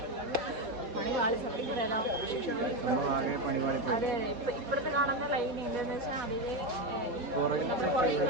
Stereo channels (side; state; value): left; late; 4.2 ms